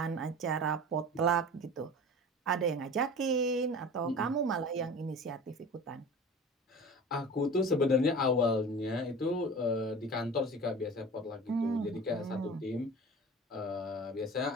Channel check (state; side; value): normal; both; correlation 0.37